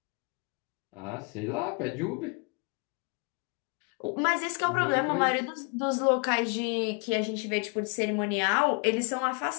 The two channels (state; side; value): quieter; right; 33.7 dB